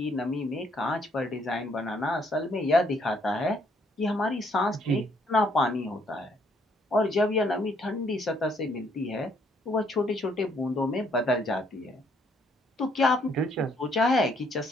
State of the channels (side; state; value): both; normal; correlation 0.68